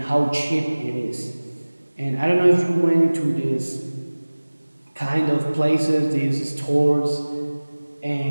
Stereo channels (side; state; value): both; inverted; correlation -1.00